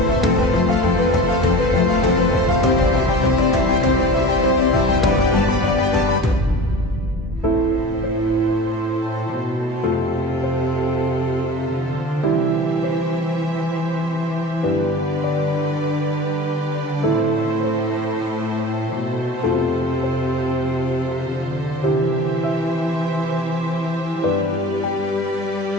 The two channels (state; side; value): normal; both; correlation 0.37